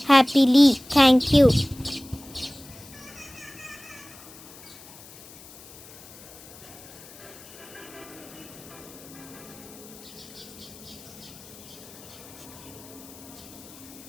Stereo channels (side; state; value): left; noise; hiss, 19 dB below the sound